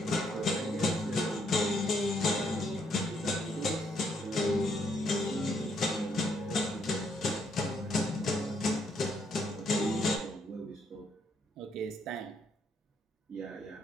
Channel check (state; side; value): normal; both; correlation 0.72